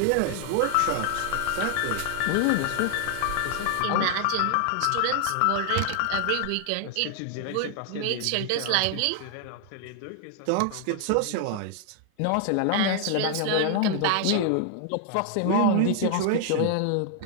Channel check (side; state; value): both; different; correlation 0.00